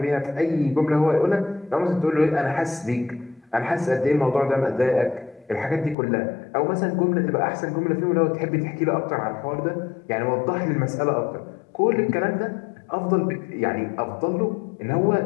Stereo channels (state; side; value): drops out; right; at 6.0 s